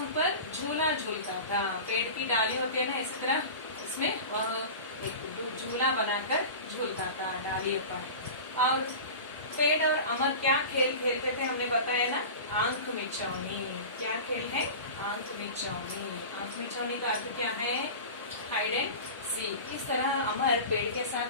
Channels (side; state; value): both; inverted; correlation -0.32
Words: पर झूला झूलता था। पेड़ की डाली होती है ना, इसी तरह इसमें वह एक झूला बनाकर झूलता था डालियों पर। और पेड़ और अमर क्या खेल खेलते थे हमने बताया ना? आंख मिचौनी। क्या खेल है? आंख मिचौनी। आंख मिचौनी का अर्थ क्या है? Hide and seek. इस तरह अमर पेड़ के